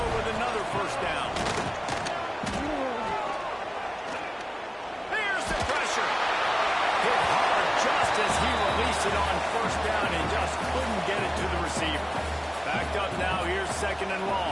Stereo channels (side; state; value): both; identical; correlation 1.00